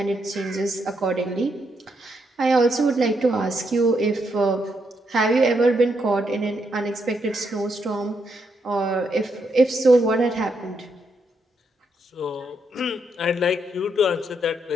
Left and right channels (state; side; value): normal; both; correlation 0.78